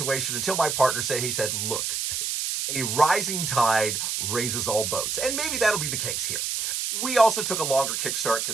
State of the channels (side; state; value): right; noise; hiss, 1 dB below the sound